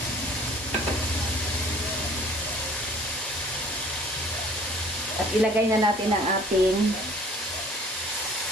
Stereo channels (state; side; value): normal; both; correlation 0.52